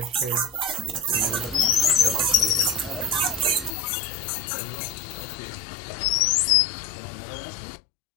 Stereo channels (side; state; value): right; drops out; at 3.7 s